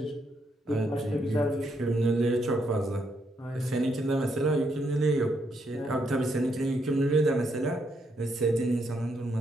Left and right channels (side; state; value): both; normal; correlation 0.76